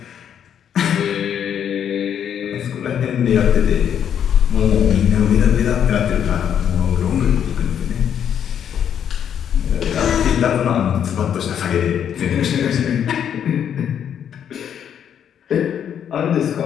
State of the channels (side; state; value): right; quieter; 8.9 dB